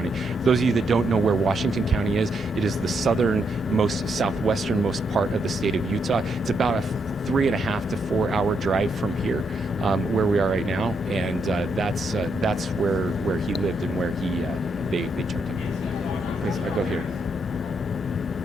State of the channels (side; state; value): both; normal; correlation 0.78